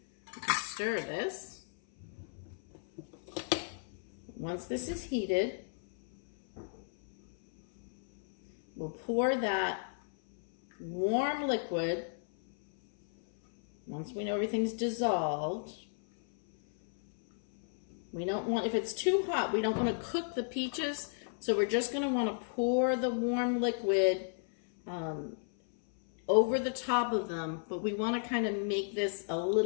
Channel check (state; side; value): silent; right; 55 dB below the other